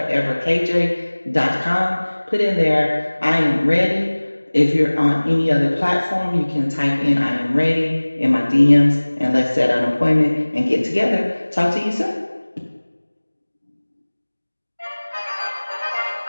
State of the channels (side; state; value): both; inverted; correlation -1.00